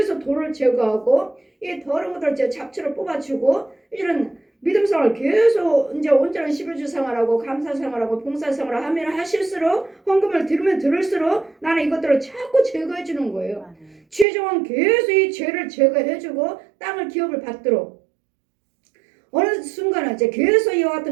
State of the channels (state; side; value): drops out; left; at 14.2 s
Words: 돌을 제거하고 이 더러운 것들을 잡초를 뽑아주고 이런 믿음 생활을 계속 이제 온전한 11주 생활하고 감사 생활하고 봉사 생활을 하면 하실수록 헌금을 들으면 들을수록 나는 이것들을 자꾸 제거해 주는 거예요. 최종은 계속 이 죄를 제거해주고 땅을 기업을 받도록 어느 순간은 이제 계속 이와